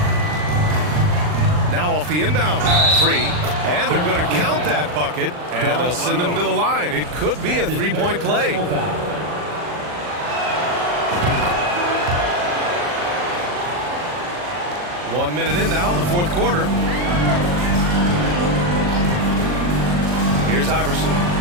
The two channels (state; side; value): late; left; 40 ms